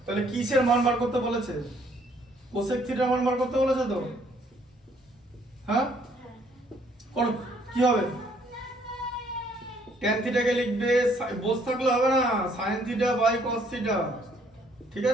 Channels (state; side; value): normal; both; correlation 0.65